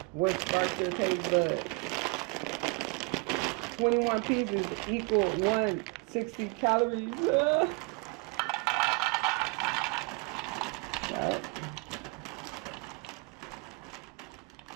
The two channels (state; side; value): quieter; left; 30.7 dB